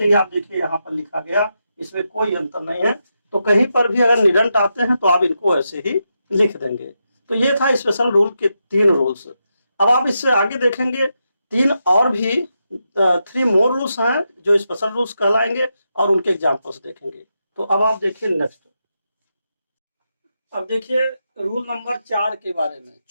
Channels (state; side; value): inverted; both; correlation -0.85